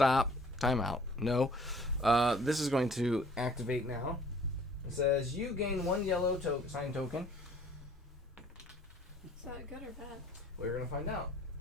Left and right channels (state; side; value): normal; both; correlation 0.55